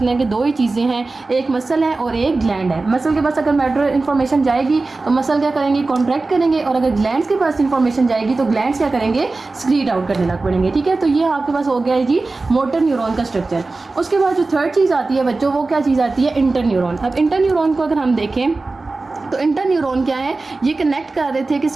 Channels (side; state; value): left; quieter; 3.5 dB